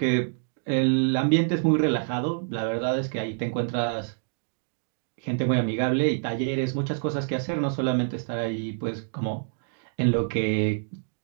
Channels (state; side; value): silent; left; digital silence